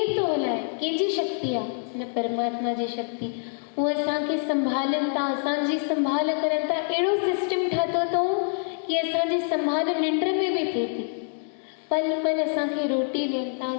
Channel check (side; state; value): right; silent; 61 dB below the other